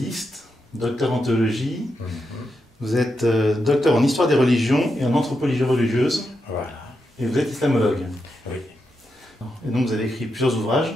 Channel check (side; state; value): both; normal; correlation 0.85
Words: docteur en théologie. Vous êtes docteur en histoire des religions et en anthropologie religieuse. Voilà. Et vous êtes islamologue. Oui. Et donc vous avez écrit plusieurs ouvrages.